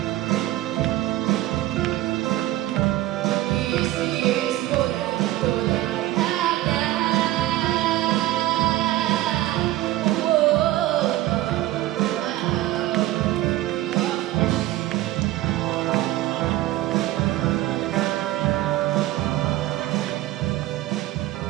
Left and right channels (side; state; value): left; quieter; 15.9 dB